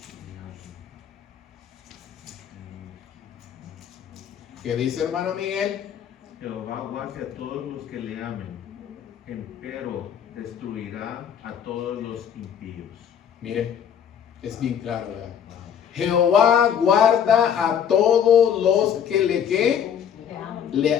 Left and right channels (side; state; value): right; quieter; 8.5 dB